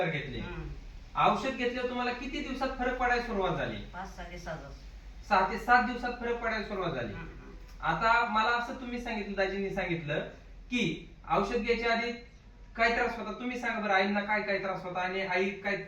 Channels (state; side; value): identical; both; correlation 1.00